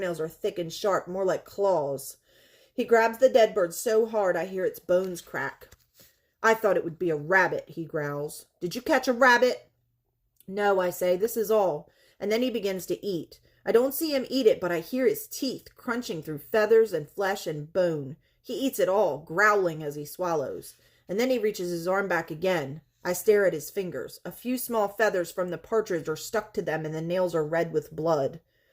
are thick and sharp, more like claws. He grabs the dead bird so hard I hear its bones crack. I thought it would be a rabbit, he growls. Did you catch a rabbit? No, I say, this is all. And then he begins to eat. I don't see him eat it, but I hear his teeth crunching through feathers and flesh and bone. He eats it all, growling as he swallows. And then he reaches his arm back again. I stare at his fingers. A few small feathers from the partridge are stuck to them, and the nails are red with blood.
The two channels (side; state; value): both; identical; correlation 1.00